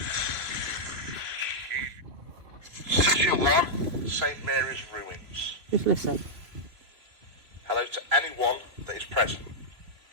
Session 1, St. Mary's Ruins. Just listen. Hello to anyone that is present.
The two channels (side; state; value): left; late; 3.0 ms